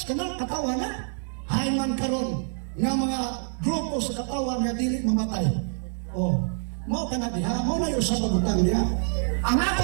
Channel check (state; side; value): silent; left; 61 dB below the other